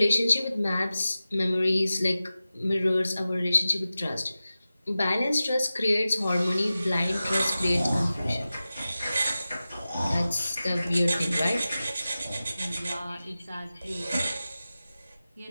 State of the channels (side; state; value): both; inverted; correlation -0.95